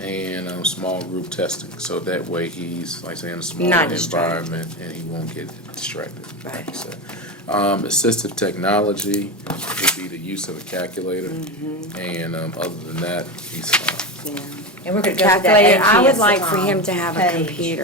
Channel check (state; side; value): normal; both; correlation 0.19